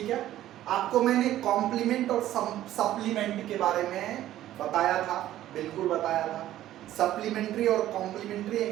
है, आपको मैंने कॉम्प्लीमेंट और सप्लीमेंट के बारे में बताया था, बिल्कुल बताया था। सप्लीमेंट्री और कॉम्प्लीमेंट्री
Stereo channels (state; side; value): quieter; left; 13.4 dB